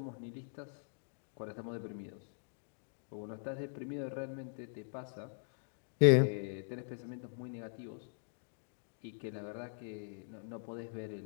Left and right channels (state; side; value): silent; right; digital silence